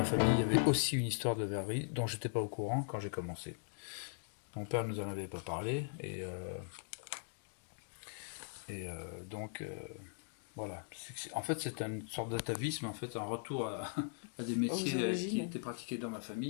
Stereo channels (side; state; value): right; silent; digital silence